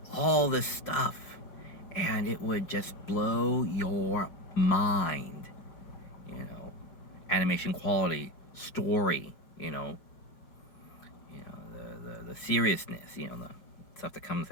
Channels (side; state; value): right; late; 5.1 ms